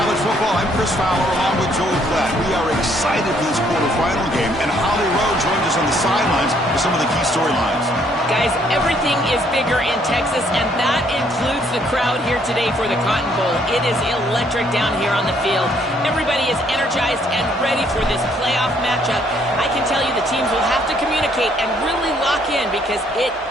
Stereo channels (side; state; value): both; normal; correlation 0.67